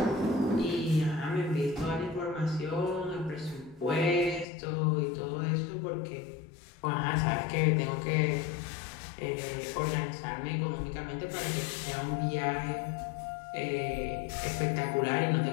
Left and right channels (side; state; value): right; drops out; at 4.5 s